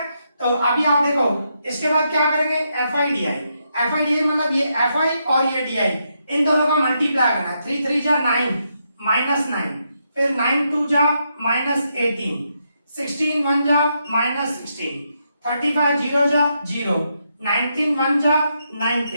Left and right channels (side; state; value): both; inverted; correlation -0.80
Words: तो अभी आप देखो इसके बाद क्या करेंगे, FI मतलब ये FI और ये DI, इन दोनों का मल्टीप्लाई करना है। 3 3 जा 9, -9, फिर 9 2 जा -18, 16 1 जा -16, 35 0 जा 0, 19 1 जा